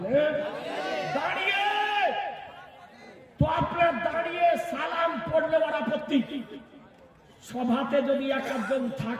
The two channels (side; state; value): both; identical; correlation 1.00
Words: দাঁড়িয়ে। তো আপনার দাঁড়িয়ে সালাম পড়লে ওর আপত্তি। সভাতে যদি একজন